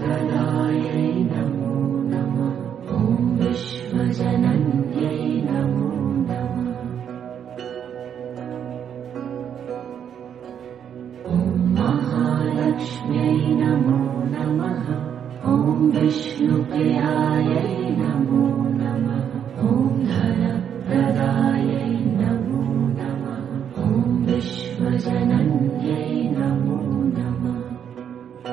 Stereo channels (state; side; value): quieter; left; 8.6 dB